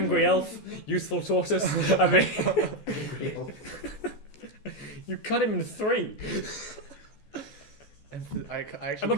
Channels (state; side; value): late; right; 14 ms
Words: elf, useful tortoise. I mean, you cut him in 3. I actually I'm